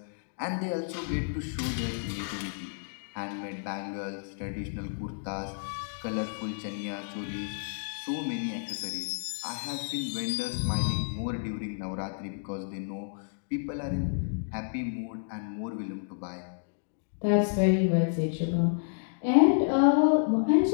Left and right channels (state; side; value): silent; right; digital silence